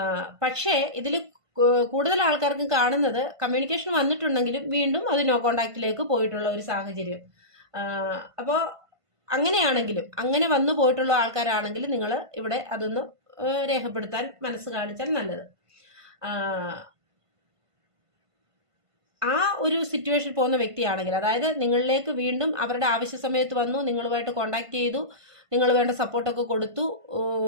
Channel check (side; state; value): left; late; 1.5 ms